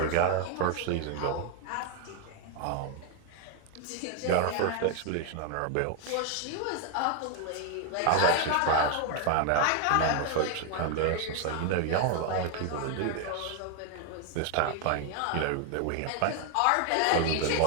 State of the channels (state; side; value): different; both; correlation 0.00